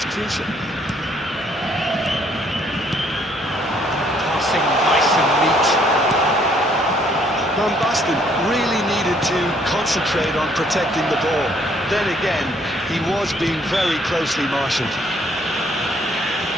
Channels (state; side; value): normal; both; correlation 0.65